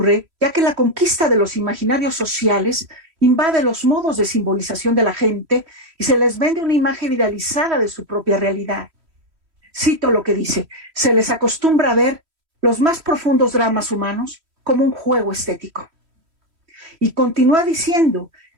ya que la conquista de los imaginarios sociales invade los modos de simbolización de la gente y se les vende una imagen idealizada de su propia realidad. Cito lo que dice: se les acostumbra a ver los más profundos dramas humanos como un juego estético. Y continúa diciendo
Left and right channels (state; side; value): late; left; 3.1 ms